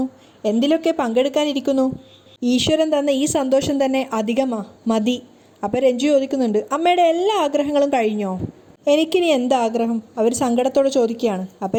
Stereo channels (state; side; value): identical; both; correlation 1.00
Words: എന്തിലൊക്കെ പങ്കെടുക്കാനിരിക്കുന്നു. ഈശ്വരൻ തന്ന ഈ സന്തോഷം തന്നെ മതി. അപ്പോൾ രഞ്ജു ചോദിക്കുന്നുണ്ട്, അമ്മയുടെ എല്ലാ ആഗ്രഹങ്ങളും കഴിഞ്ഞോ? എനിക്കിനി എന്താഗ്രഹം? അവർ സങ്കടത്തോടെ ചോദിക്കുകയാണ്. അപ്പോൾ